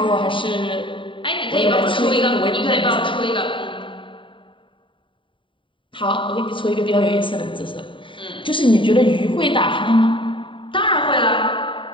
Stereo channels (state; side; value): late; right; 0.25 ms